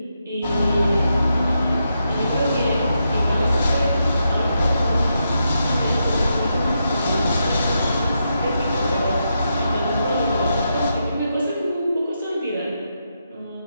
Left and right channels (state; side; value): inverted; both; correlation -0.84